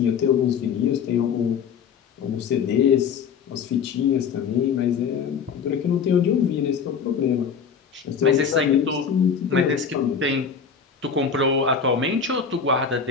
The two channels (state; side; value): quieter; right; 6.5 dB